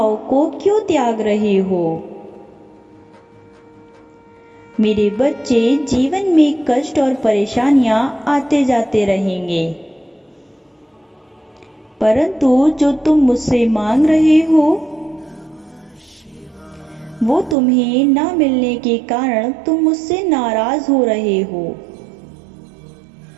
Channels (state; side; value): drops out; left; at 17.6 s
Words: को क्यों त्याग रहे हो? मेरे बच्चे, जीवन में कष्ट और परेशानियां आते जाते रहेंगे, परंतु जो तुम मुझसे मांग रहे हो वो तुम्हें ना मिलने के कारण तुम मुझसे नाराज हो रहे हो।